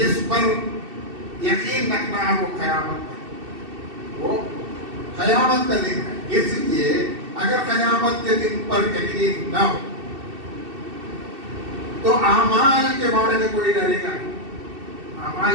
پر یقین رکھنا ہے وہ قیامت ہے، وہ قیامت کا دن ہے۔ اس لیے اگر قیامت کے دن پر یقین نہ ہو تو اعمال کے بارے میں کوئی ڈرے گا نہیں،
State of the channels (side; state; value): left; late; 2.7 ms